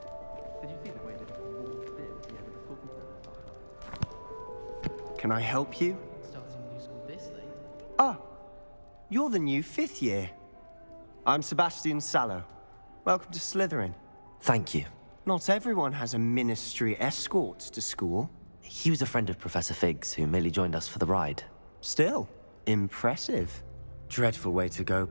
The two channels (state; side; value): inverted; both; correlation -1.00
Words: Did you see the way that walked in? Yeah, with the talking. Can I help you? Starting new school this late. Ah, you're the new fifth year. I'm Sebastian Sallow. Welcome to Slytherin. Thank you. Not everyone has a ministry escort to school. he was a friend of Professor Fig's who merely joined us for the ride. Still, impressive. Dreadful way to go,